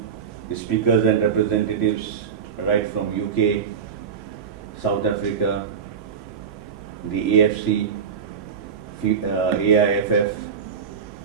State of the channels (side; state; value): left; quieter; 6.8 dB